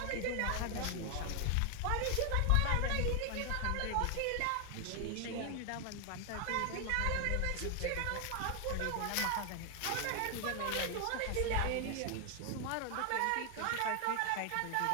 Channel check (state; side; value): different; both; correlation 0.00